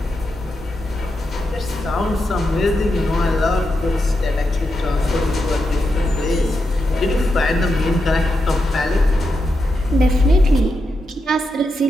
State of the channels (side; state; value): both; normal; correlation 0.86